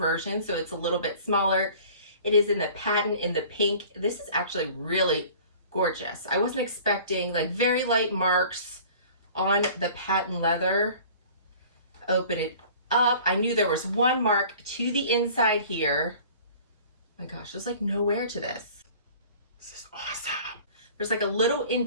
so it's a little bit smaller. It is in the patent in the pink. This is actually really gorgeous. I wasn't expecting, like, very light marks on the patent leather. Open it up. I knew there was one mark to the inside here. Oh my gosh, there's like no wear to this. This is awesome. There's like a little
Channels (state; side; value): inverted; both; correlation -0.47